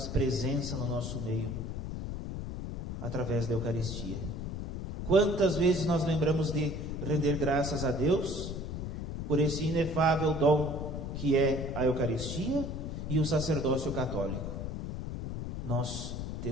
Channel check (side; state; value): left; noise; rumble, 5 dB below the sound